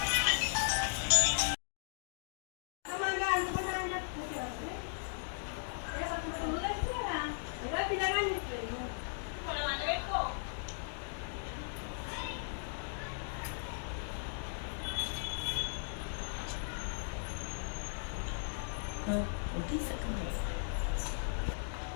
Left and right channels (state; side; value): silent; right; digital silence